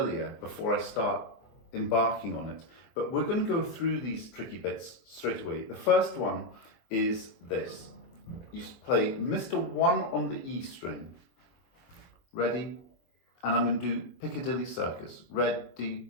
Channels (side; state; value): right; late; 23 ms